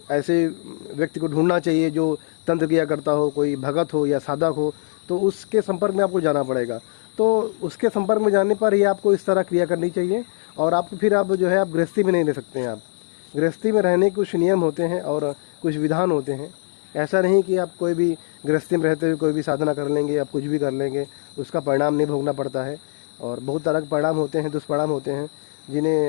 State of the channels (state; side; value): silent; right; 64 dB below the other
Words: ऐसे व्यक्ति को ढूंढना चाहिए जो तंत्र किया करता हो, कोई भगत हो या साधक हो, तो उसके संपर्क में आपको जाना पड़ेगा। तो उसके संपर्क में जाने पर ही आपको इस तरह क्रिया करनी चाहिए और आपको फिर आप जो है आप गृहस्थी में नहीं रह सकते हैं। आप गृहस्थी में रहने के कुछ नियम होते हैं और कुछ विधान होते हैं। ऐसा नहीं कि आप कोई भी गृहस्थी में रहते हुए कोई भी साधना कर लेंगे, आप कुछ भी कर लेंगे, उसका परिणाम नहीं भोगना पड़ता है। और बहुत तरह के परिणाम होते हैं, दुष्परिणाम होते हैं,